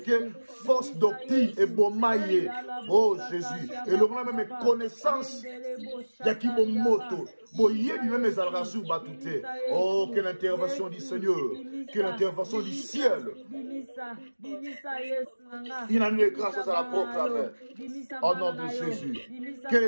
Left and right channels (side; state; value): both; inverted; correlation -1.00